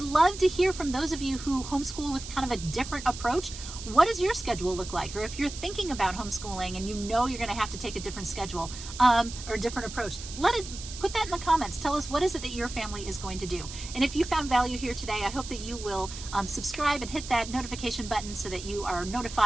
love to hear from those of you who homeschool with kind of a different approach. What does your schedule look like? Or if you're thinking about homeschooling and you know you're going to have to take a different schedule or a different approach, put that in the comments. Tell us, what is it that your family is going to do? And if you found value here today, I hope that you will subscribe and hit that notification button so that you are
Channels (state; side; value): noise; right; hiss, 11 dB below the sound